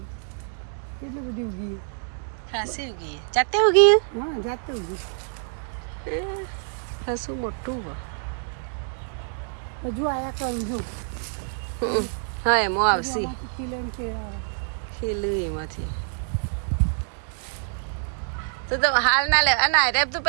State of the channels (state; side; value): silent; left; digital silence